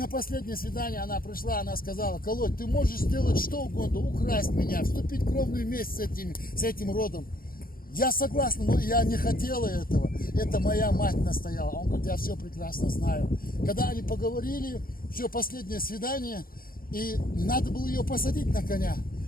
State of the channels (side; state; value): right; late; 0.42 ms